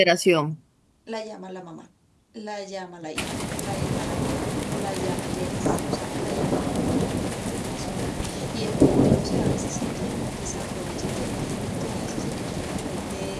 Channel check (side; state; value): both; identical; correlation 1.00